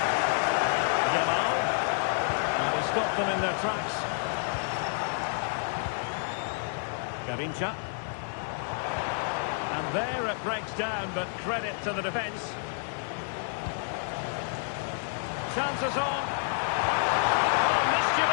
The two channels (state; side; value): silent; right; digital silence